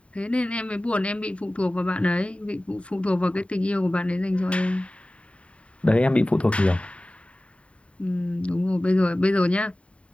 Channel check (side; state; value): right; late; 0.062 ms